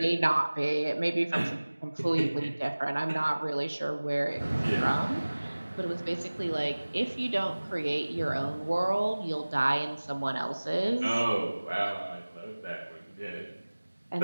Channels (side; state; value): both; inverted; correlation -1.00